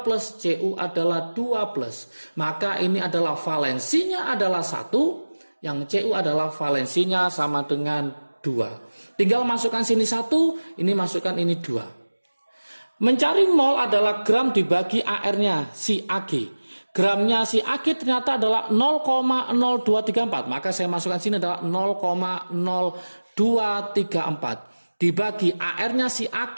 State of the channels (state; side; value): inverted; both; correlation -1.00